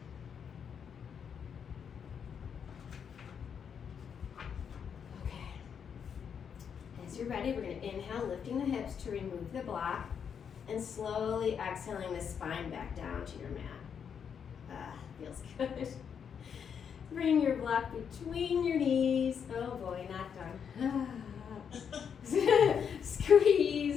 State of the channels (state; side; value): quieter; right; 7.3 dB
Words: Okay, as you're ready, we're gonna inhale, lifting the hips to remove the block. And slowly exhaling the spine back down to your mat. Feels good. Bring your block between your knees. Oh boy, not done.